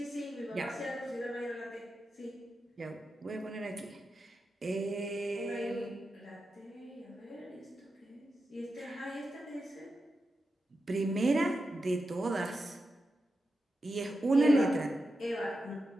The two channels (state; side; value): normal; both; correlation 0.89